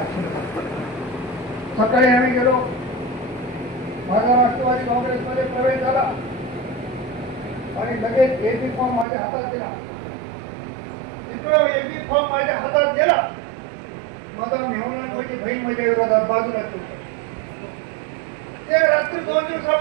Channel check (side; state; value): left; drops out; at 9.1 s